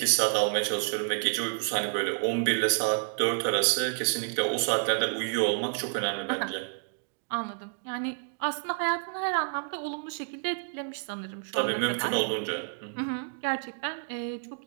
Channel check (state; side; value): silent; left; digital silence